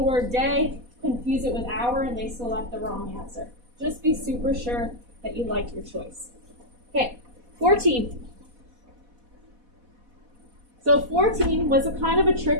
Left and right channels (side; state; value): left; late; 4.1 ms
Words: word day, confuse it with hour, and they select the wrong answer. Just be super sure that you like your choice. Okay, 14. So 14 was a kind of a